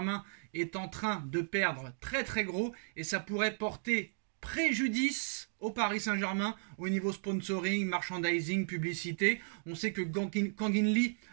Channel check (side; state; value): left; silent; digital silence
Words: est en train de perdre très gros et ça pourrait porter préjudice au Paris Saint-Germain au niveau sponsoring, merchandising, publicité. On sait que Kang In-lee